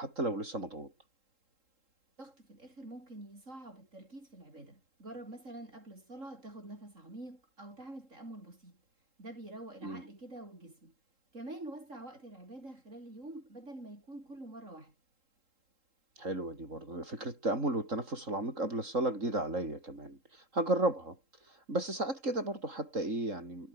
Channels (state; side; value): late; left; 3.7 ms